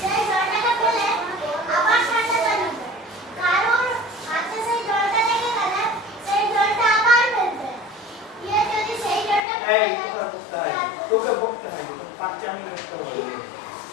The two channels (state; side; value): drops out; right; at 9.5 s